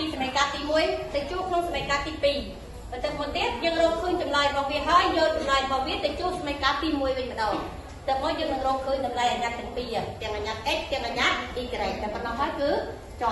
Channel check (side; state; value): both; identical; correlation 1.00